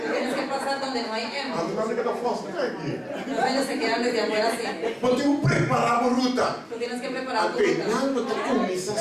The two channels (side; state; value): both; identical; correlation 1.00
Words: tienes que pasar donde no hay M. A dinâmica da força está aqui. Los ellos se quedan desde afuera así. Podemos preparar a ruta. Tú tienes que preparar tu Até ruta. não te começa a